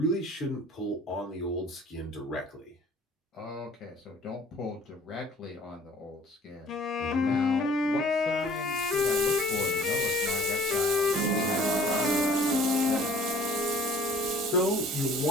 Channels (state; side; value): normal; both; correlation 0.52